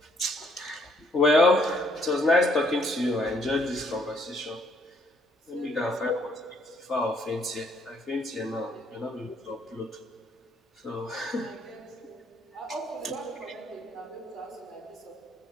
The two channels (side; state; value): both; normal; correlation 0.67